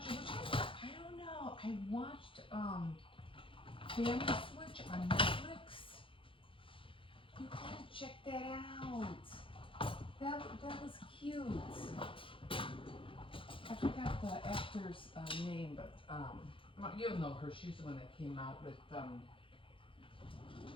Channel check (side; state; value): right; late; 0.25 ms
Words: I don't know, I watched, Family Switch on Netflix. You gotta check that out. That was cute. I forgot the actor's name, but, you'll know her. She's the one that came out with,